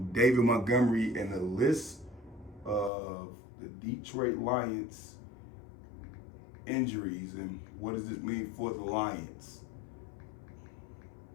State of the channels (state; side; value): drops out; right; at 2.9 s